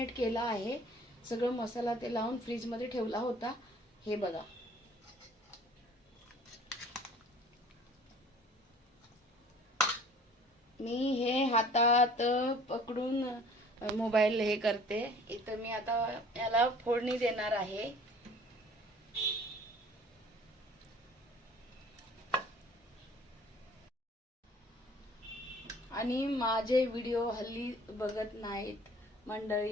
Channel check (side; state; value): both; normal; correlation 0.51